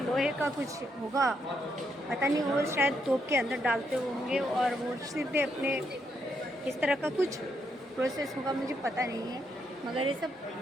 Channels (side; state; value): both; normal; correlation 0.77